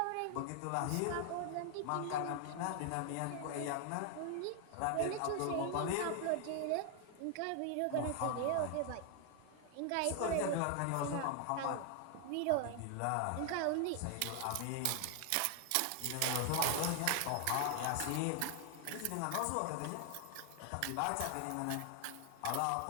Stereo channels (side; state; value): both; different; correlation 0.00